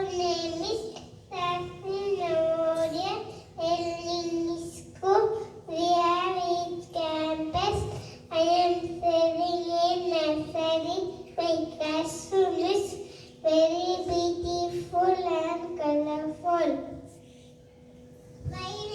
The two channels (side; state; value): both; identical; correlation 1.00